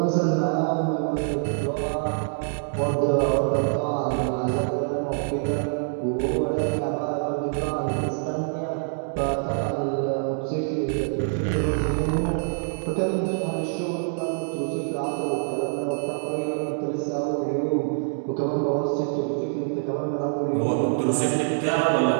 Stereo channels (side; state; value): left; silent; digital silence